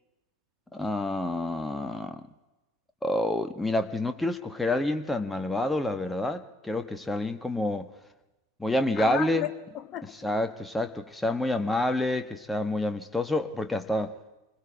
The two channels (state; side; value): normal; both; correlation 0.78